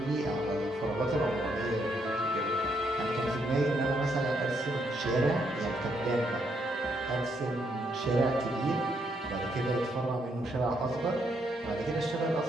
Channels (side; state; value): both; normal; correlation 0.75